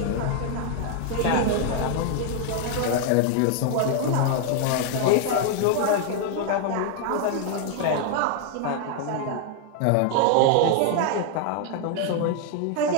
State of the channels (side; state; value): both; different; correlation 0.00